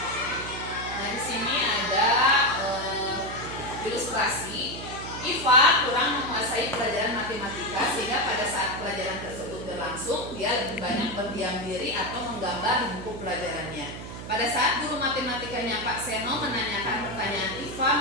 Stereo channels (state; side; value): noise; right; hum, 10 dB below the sound